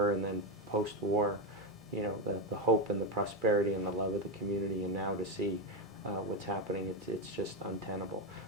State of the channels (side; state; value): both; normal; correlation 0.09